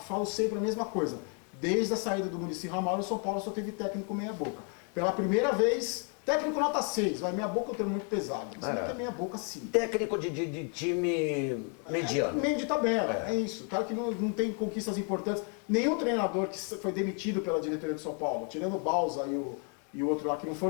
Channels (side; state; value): right; quieter; 39.8 dB